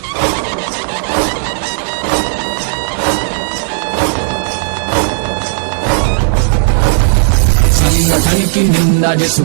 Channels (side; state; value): left; silent; digital silence